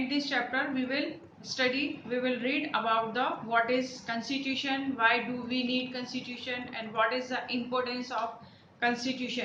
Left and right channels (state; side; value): identical; both; correlation 1.00